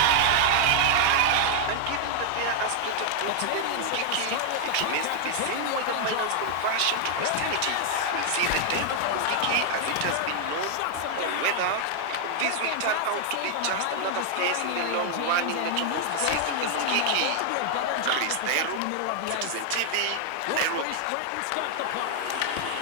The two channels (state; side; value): different; both; correlation 0.00